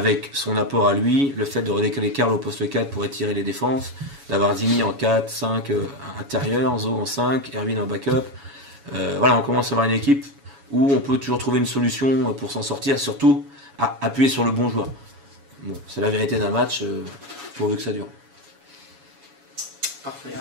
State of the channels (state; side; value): late; left; 7.1 ms